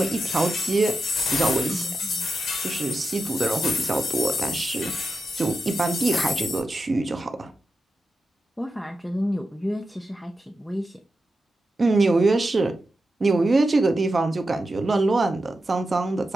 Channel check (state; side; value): normal; both; correlation 0.89